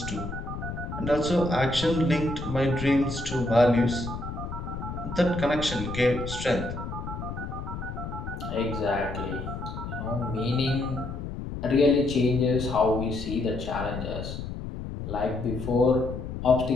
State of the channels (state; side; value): noise; left; rumble, 7 dB below the sound